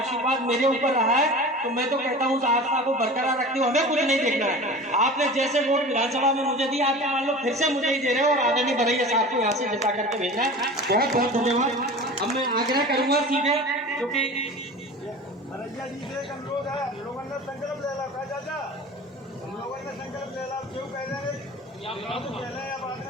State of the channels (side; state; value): both; normal; correlation 0.36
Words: मेरे ऊपर रहा है। तो मैं तो कहता हूँ उस आस्था को बरकरार रखते हुए हमें कुछ नहीं देखना है। आपने जैसे वोट विधानसभा में मुझे दिया, आपने मान लो फिर से मुझे ही दे रहे हो, और आदरणीय बरैया साहब को यहाँ से जिता करके भेजना है। बहुत बहुत धन्यवाद। अब मैं आग्रह करूंगा सीधे, क्योंकि बरैया जी से एक अनुरोध है, हम लोगों ने संकल्प ले ला चाचा, हम लोगों ने संकल्प ले ला, क्यों कह रहे हैं पहले या बाद